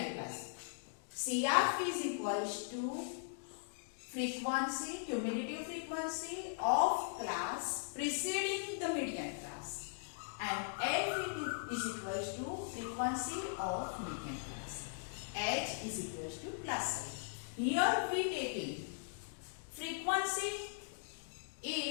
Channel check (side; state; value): right; silent; digital silence